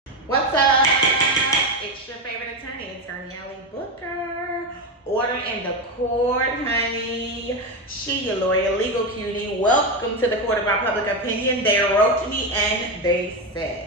What's up? It's your favorite attorney, Attorney Ellie Booker. Order in the court, honey. She, your lawyer, legal cutie. Welcome to the court of our public opinion. They wrote to me and they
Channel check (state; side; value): normal; both; correlation 0.13